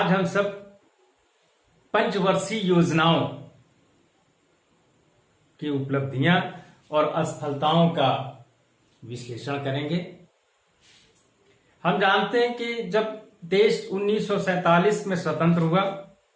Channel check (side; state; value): both; identical; correlation 1.00